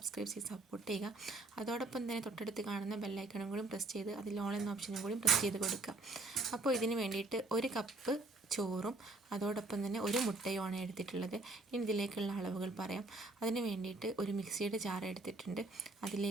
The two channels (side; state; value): left; quieter; 3.1 dB